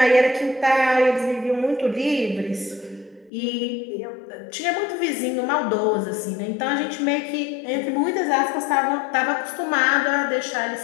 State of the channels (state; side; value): drops out; right; at 3.3 s